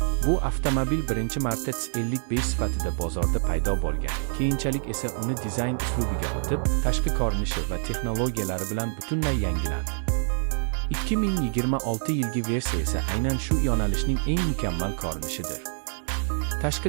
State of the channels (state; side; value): silent; left; 61 dB below the other